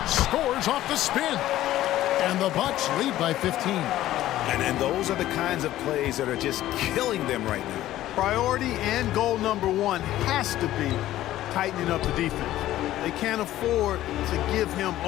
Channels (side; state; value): right; quieter; 14.2 dB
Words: Scores off the spin. And the Bucks lead by 15. And those are the kinds of plays that are just killing them right now. Priority and goal number 1 has to be tightening up the defense. They can't afford to give him